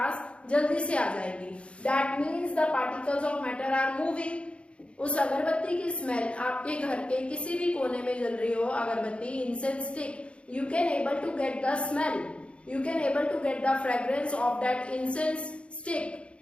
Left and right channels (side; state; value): right; late; 0.059 ms